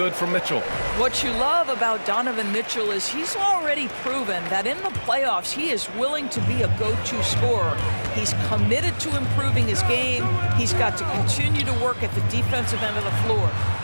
from Mitchell. What you love about Donovan Mitchell is he's already proven that in the playoffs he is willing to be a go-to scorer. He's committed to improving his game. He's got to continue to work at the defensive end of the floor.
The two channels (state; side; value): inverted; both; correlation -1.00